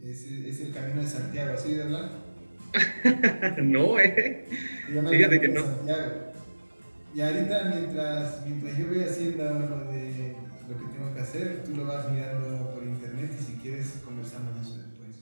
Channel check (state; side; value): inverted; both; correlation -1.00